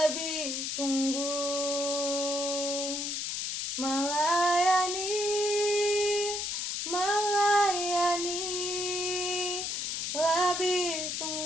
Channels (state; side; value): noise; left; hiss, 2 dB below the sound